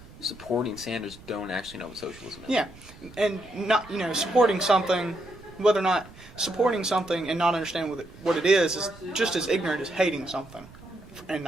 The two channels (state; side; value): noise; right; rumble, 20 dB below the sound